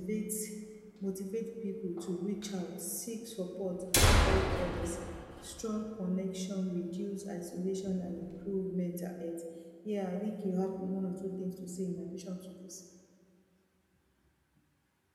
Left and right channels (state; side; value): identical; both; correlation 1.00